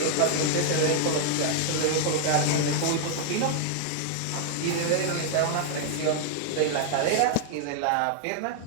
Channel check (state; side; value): different; both; correlation 0.00